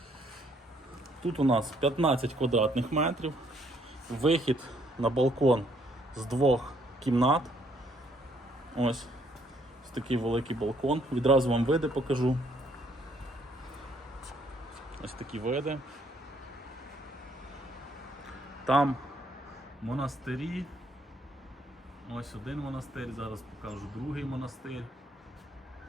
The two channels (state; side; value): normal; both; correlation 0.67